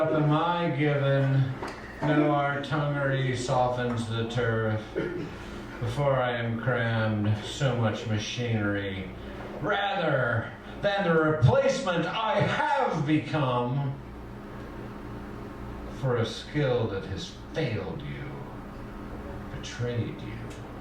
am I given, no artillery softens the turf. Before I am crammed so much machinery, rather than the replacement I have become for a skill that has failed you, betrayed you.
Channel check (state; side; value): identical; both; correlation 1.00